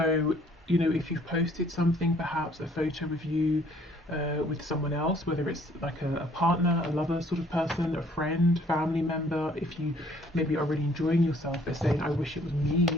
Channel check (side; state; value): both; normal; correlation 0.60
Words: you know, if you've posted something, perhaps a photo of you with someone else, whether it's like a partner, a lover sort of person, a friend, family member, if you maybe are really enjoying yourself, they're saying, I wish it was me